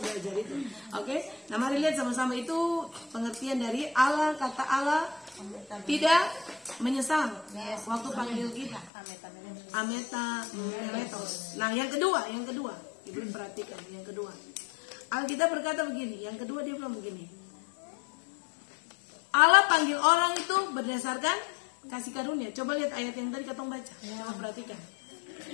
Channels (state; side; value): drops out; right; at 8.9 s